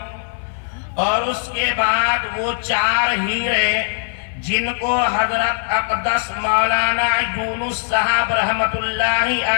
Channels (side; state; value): right; silent; 57 dB below the other